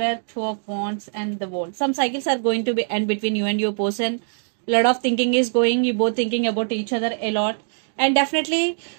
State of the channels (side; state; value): left; silent; digital silence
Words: 2 of Wands and the World. Some cycles are going to be end between you and your person. A lot of thinking is going. You both thinking about each other a lot. And definitely